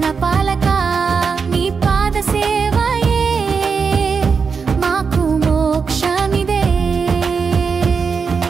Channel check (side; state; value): left; quieter; 5.5 dB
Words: పాలక నీ పాద సేవయే మాకు మోక్షమిదే